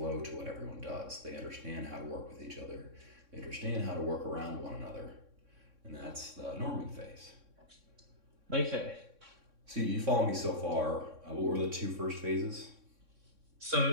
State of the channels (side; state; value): left; late; 3.6 ms